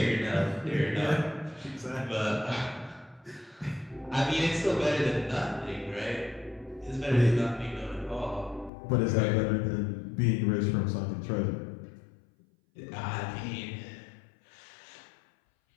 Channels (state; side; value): drops out; right; at 8.7 s